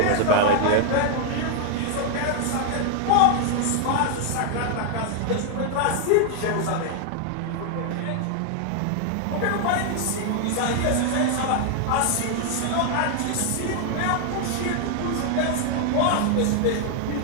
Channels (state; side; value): different; both; correlation 0.00